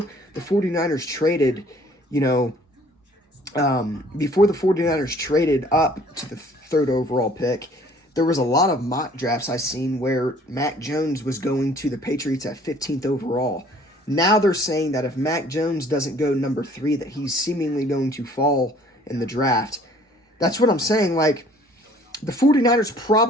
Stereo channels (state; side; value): normal; both; correlation 0.56